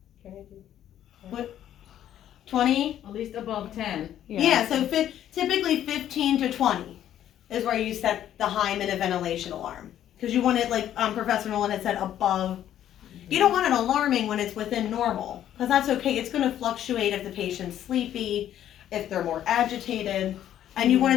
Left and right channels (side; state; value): right; quieter; 11.2 dB